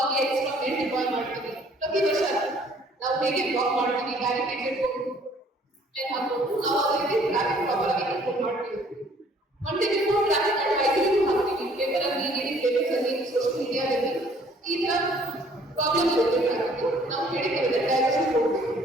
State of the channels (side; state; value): both; normal; correlation 0.59